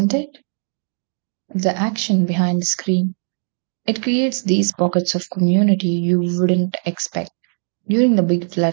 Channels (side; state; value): left; silent; 56 dB below the other